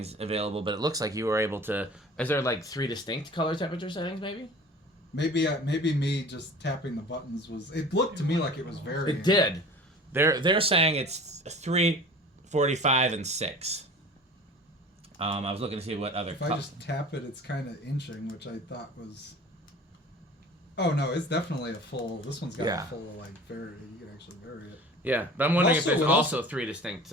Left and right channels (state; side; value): normal; both; correlation 0.42